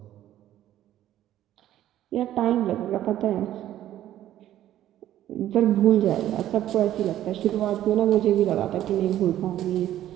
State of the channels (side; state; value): left; quieter; 12.6 dB